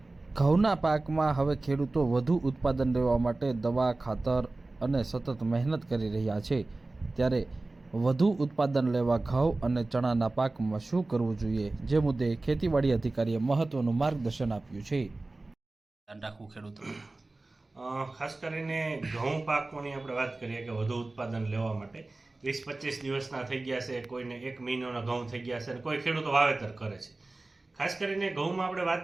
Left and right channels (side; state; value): left; quieter; 3.1 dB